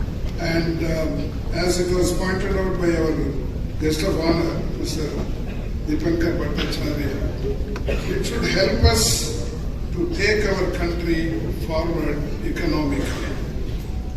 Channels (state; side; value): identical; both; correlation 1.00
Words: And as it was pointed out by our guest of honor, Mr. Dipankar Bhattacharya, it should help us to take our country forward economically.